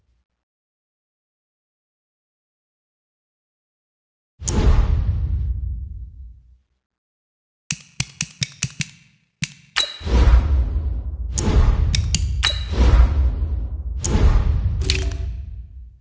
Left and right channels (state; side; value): identical; both; correlation 1.00